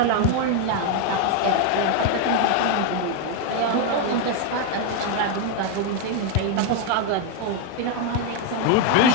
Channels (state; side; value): different; both; correlation 0.01